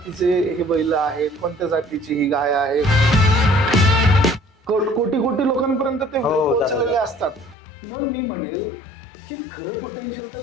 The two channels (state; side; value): drops out; right; at 7.6 s